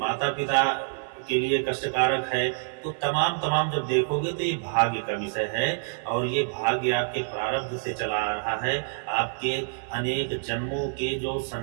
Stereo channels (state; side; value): silent; left; digital silence